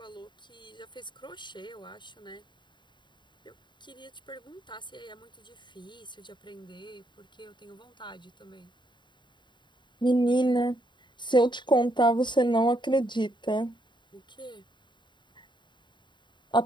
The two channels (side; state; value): right; late; 0.22 ms